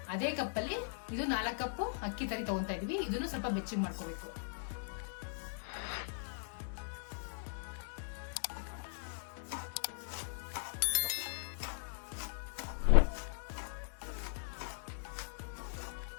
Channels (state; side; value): silent; right; digital silence